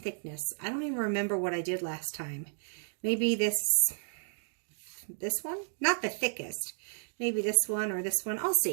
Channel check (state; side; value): silent; left; digital silence